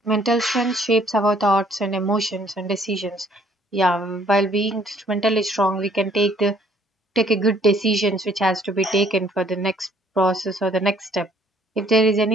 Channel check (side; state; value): both; normal; correlation 0.62